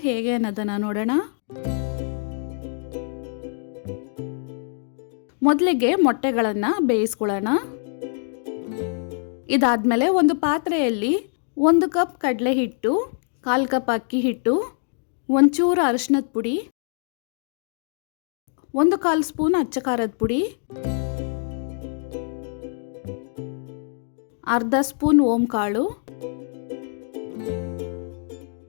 ಹೇಗೆ ಅನ್ನೋದನ್ನು ನೋಡೋಣ. ಮೊದಲಿಗೆ ಮೊಟ್ಟೆಗಳನ್ನು ಬೇಯಿಸ್ಕೊಳ್ಳೋಣ. ಇದಾದಮೇಲೆ ಒಂದು ಪಾತ್ರೆಯಲ್ಲಿ 1 ಕಪ್ ಕಡಲೆ ಹಿಟ್ಟು, 1/4 ಕಪ್ ಅಕ್ಕಿ ಹಿಟ್ಟು, ಒಂಚೂರು ಅರಿಶಿನದ ಪುಡಿ, 1/4 ಸ್ಪೂನ್ ಅಚ್ಚ ಖಾರದ ಪುಡಿ, ಅರ್ಧ ಸ್ಪೂನ್ ಓಂ ಕಾಳು,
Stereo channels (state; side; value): silent; right; 61 dB below the other